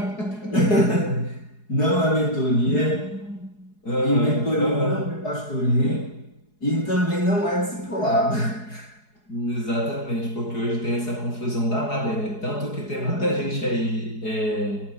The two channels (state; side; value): late; right; 4.8 ms